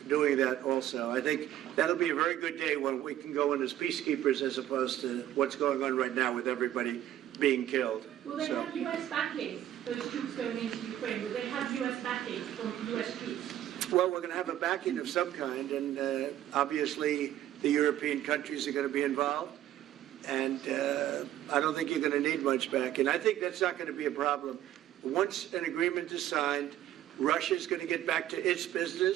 doing that also. I think that'll be a very good day when we can go in as peacekeepers as opposed to what's going on right now with everybody being killed. Will they So- have U.S. backing, those troops going into Ukraine? Will they have U.S. backing from U.S. troops? Well, we're going to have a backing of some kind, and obviously the European countries are going to be involved. And I don't think you're going to need much backing. I think that's not going to be a problem. Once an agreement is signed, Russia's going to get back to its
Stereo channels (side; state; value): left; quieter; 12.4 dB